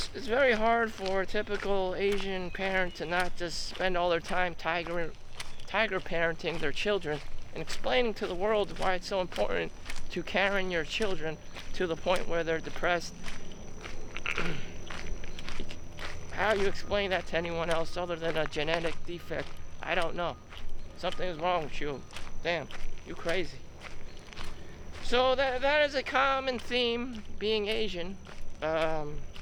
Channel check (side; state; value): both; identical; correlation 1.00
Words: very hard for a typical Asian parent to not just spend all their time tiger parenting their children and explaining to the world why it's so important to Karen your children to the point where they're depressed. How you explain that to anyone else other than a genetic defect, I don't know. Something is wrong with you. Damn, you crazy. So that is a common theme, being Asian. You